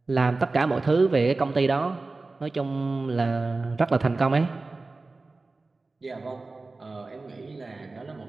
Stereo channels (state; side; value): quieter; left; 3.5 dB